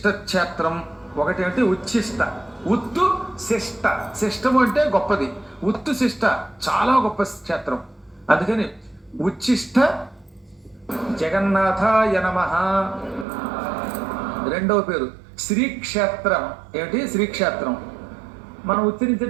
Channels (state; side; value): drops out; left; at 13.2 s